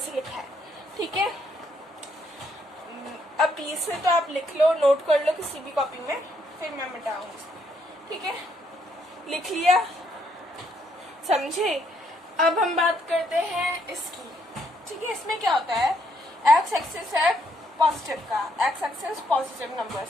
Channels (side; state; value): both; normal; correlation 0.73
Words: लिखा है, ठीक है। अब इसमें तो आप लिख लो, नोट कर लो किसी भी कॉपी में, फिर मैं मिटाऊंगी, ठीक है। लिख लिया, समझे। अब हम बात करते हैं इसकी, ठीक है। इसमें क्या होता है, एक्स एक्सिस है पॉजिटिव का, एक्स एक्सिस पॉजिटिव